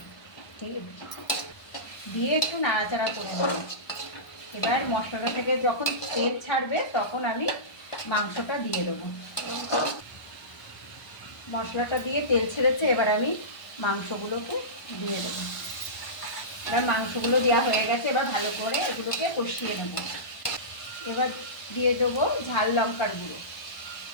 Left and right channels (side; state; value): right; late; 1.2 ms